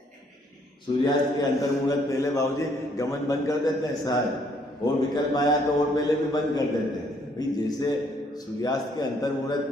सूर्यास्त के अंतर्मुहूर्त पहले बाबूजी गमन बंद कर देते हैं सारे, और विकल्प आया तो और पहले भी बंद कर देते हैं। भाई जैसे सूर्यास्त के अंतर्मुहूर्त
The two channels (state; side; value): normal; both; correlation 0.67